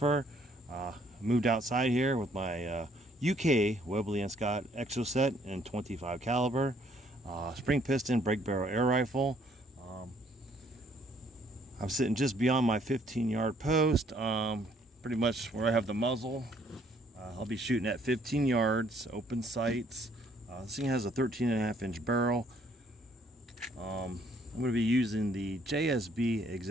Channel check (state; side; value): normal; both; correlation 0.64